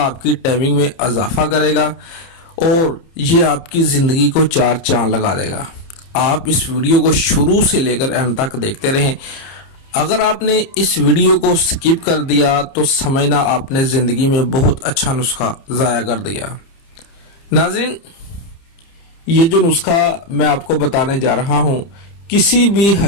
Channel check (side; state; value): right; late; 30 ms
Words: کی ٹائمنگ میں اضافہ کرے گا اور یہ آپ کی زندگی کو چار چاند لگا دے گا۔ آپ اس ویڈیو کو شروع سے لے کر اینڈ تک دیکھتے رہیں۔ اگر آپ نے اس ویڈیو کو سکپ کر دیا تو سمجھنا آپ نے زندگی میں بہت اچھا نسخہ ضائع کر دیا۔ ناظرین، یہ جو نسخہ میں آپ کو بتانے جا رہا ہوں، کسی بھی